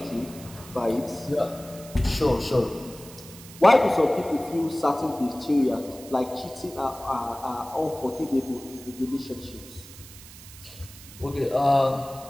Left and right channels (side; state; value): right; noise; hiss, 18 dB below the sound